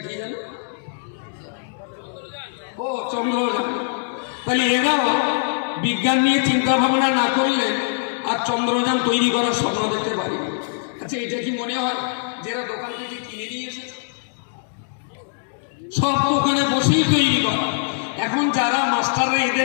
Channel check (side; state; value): right; silent; digital silence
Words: কি জানো? ও চন্দ্রযান। তাহলে এরাও বিজ্ঞান নিয়ে চিন্তা ভাবনা না করলে আর চন্দ্রযান তৈরি করার স্বপ্ন দেখতে পারি। আচ্ছা এটা কি মনে হয় যে এরা দোকান থেকে কিনে নিয়ে এসেছে? সব দোকানে বসেই তৈরি করা। এখন যারা মাস্টাররা